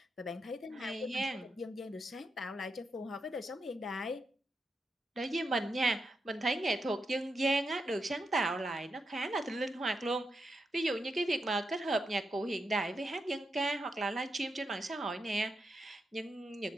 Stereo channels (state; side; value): normal; both; correlation 0.85